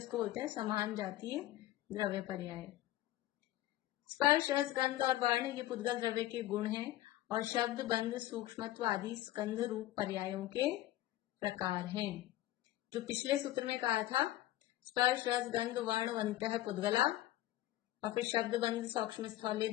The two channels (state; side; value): quieter; right; 15.2 dB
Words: बोलते हैं समान जातीय द्रव्य पर्याय। स्पर्श, रस, गंध और वर्ण ये पुद्गल द्रव्य के गुण हैं और शब्द, बंध, सूक्ष्मत्व आदि स्कंध रूप पर्यायों के प्रकार हैं। जो पिछले सूत्र में कहा था, स्पर्श, रस, गंध, वर्ण, वंतः पुद्गला, और फिर शब्द, बंध, सूक्ष्म स्थल,